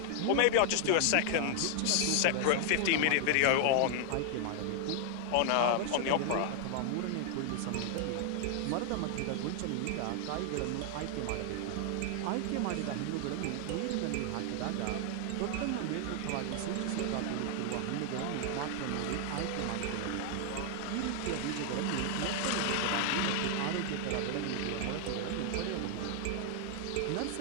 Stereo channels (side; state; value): both; different; correlation 0.00